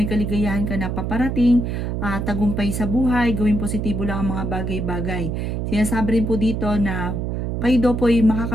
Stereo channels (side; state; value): right; noise; hum, 2 dB below the sound